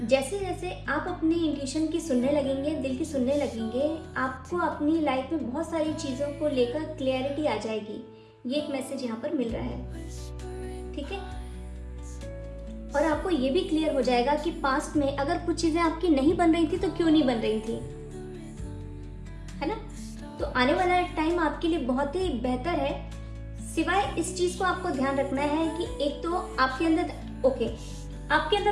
जैसे जैसे आप अपने इंट्यूशन की सुनने लगेंगे, दिल की सुनने लगेंगे, आपको अपनी लाइफ में बहुत सारी चीज़ों को लेकर क्लैरिटी आ जाएगी। ये एक मैसेज यहाँ पर मिल रहा है, ठीक है। और आपको ये भी क्लियर हो जाएगा कि पास्ट में अगर कुछ चीज़ें आपकी नहीं बन रही थी तो क्यों नहीं बन रही थी, है ना। तो आने वाला टाइम आपके लिए बहुत ही बेहतर है। सिवाय इस चीज़ को आपको ध्यान रखना है कि एक तो आपके अंदर आपके अंदर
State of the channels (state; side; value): identical; both; correlation 1.00